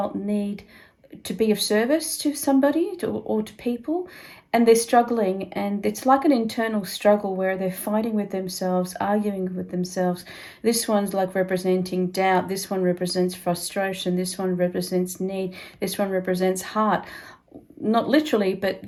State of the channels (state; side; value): identical; both; correlation 1.00